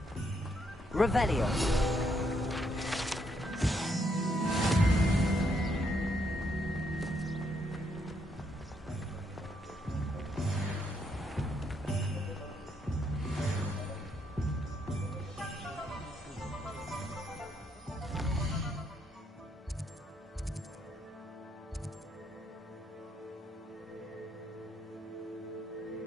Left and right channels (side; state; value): both; normal; correlation 0.75